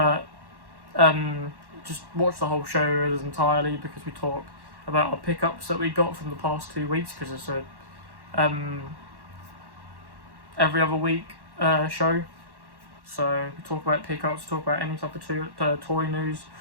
just watch the whole show entirely, because we talk about our pickups that we got from the past 2 weeks, because it's a every other week show. So we talk about pickups, talk about any type of toy news,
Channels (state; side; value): late; left; 1.1 ms